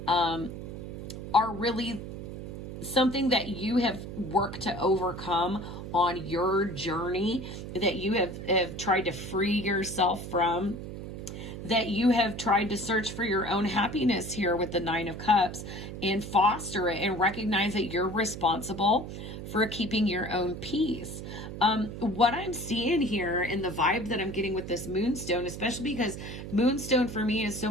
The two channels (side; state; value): right; noise; hum, 9 dB below the sound